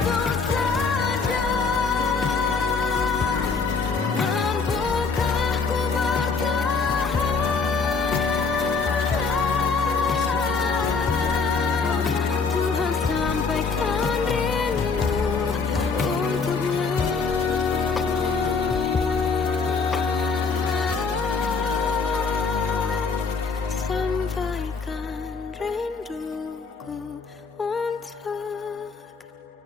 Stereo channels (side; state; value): right; quieter; 4.8 dB